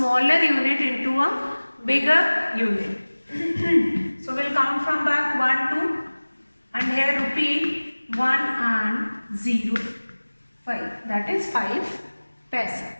unit into a bigger unit. So we'll count from back 1, 2 and here rupee 1 and 0, 5. That is 5 paisa.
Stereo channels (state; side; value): inverted; both; correlation -1.00